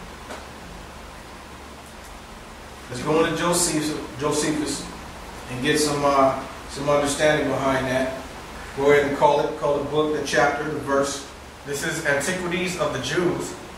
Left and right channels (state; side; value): identical; both; correlation 1.00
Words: Let's go into Josephus and get some understanding behind that. Go ahead and call the book, the chapter, the verse. This is Antiquities of the Jews,